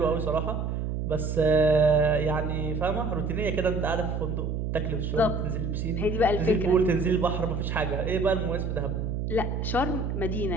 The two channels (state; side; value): noise; right; hum, 2 dB below the sound